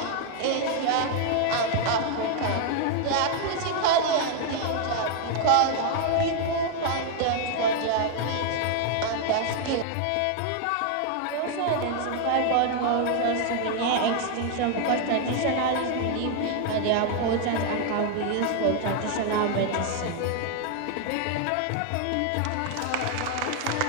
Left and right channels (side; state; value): both; different; correlation 0.00